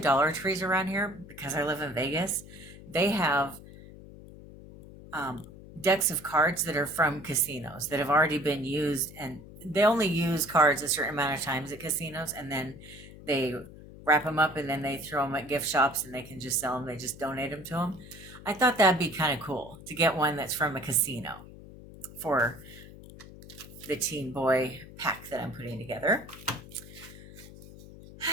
Trees around here, because I live in Vegas, they have decks of cards that are from casinos that have already been used, and they only use cards a certain amount of times at casinos, and then they wrap them up and then they throw them at gift shops and they can just sell them. They just donate them to them. I thought that'd be kind of cool to get one that's from a casino for the teen boy pack that I'm putting together.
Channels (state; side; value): noise; left; hum, 17 dB below the sound